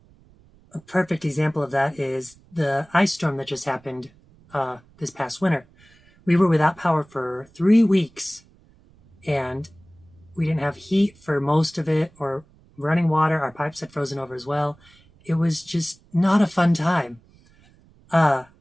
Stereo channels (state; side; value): noise; right; rumble, 29 dB below the sound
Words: perfect example of that is the ice storm that just happened this past winter. We were without power for 3 weeks, and we didn't have heat for most of it, or running water. Our pipes had frozen over as well. It was just not a fun time.